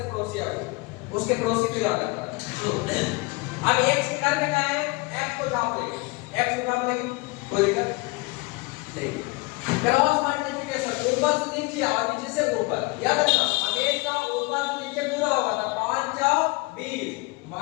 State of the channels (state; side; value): quieter; right; 25.7 dB